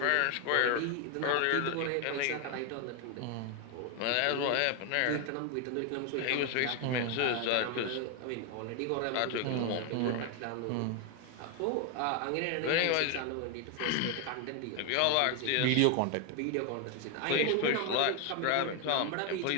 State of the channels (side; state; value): both; different; correlation 0.01